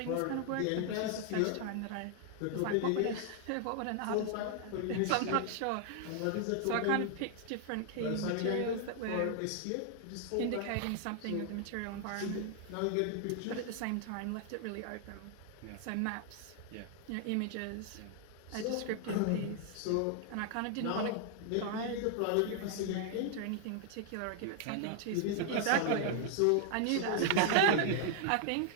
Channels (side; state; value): both; different; correlation 0.00